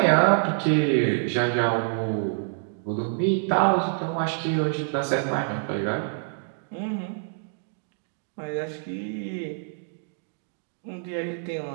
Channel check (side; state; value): left; silent; digital silence